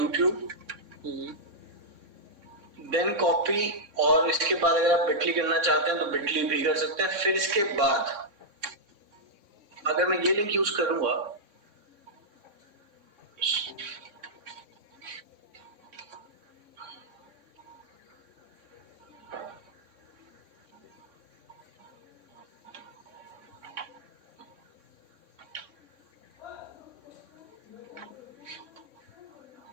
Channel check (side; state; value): left; late; 3.6 ms